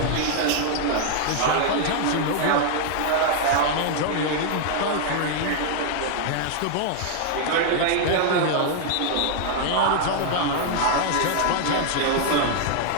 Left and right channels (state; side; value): different; both; correlation 0.00